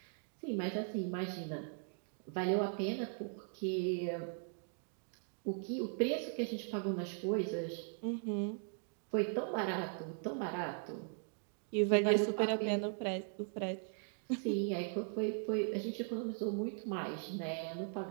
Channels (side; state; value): left; silent; 52 dB below the other